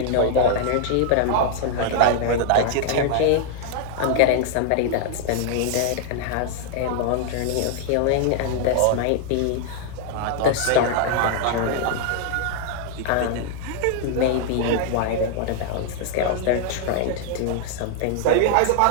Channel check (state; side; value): different; both; correlation 0.00